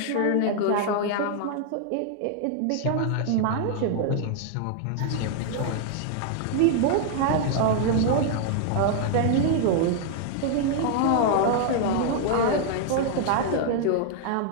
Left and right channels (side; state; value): both; different; correlation 0.00